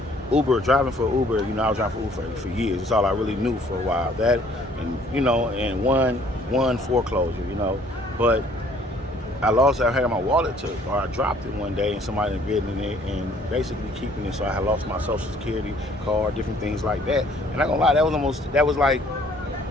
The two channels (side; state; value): both; normal; correlation 0.59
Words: driving for Uber, I was driving for Uber for years. That's all I really knew for a while. That and and one foreclosure, but I had my wallet took, or I dropped it one day, and somebody had written it and basically keeping it. So I had lost my social security card, different things like that. And I'm not gonna lie, that was like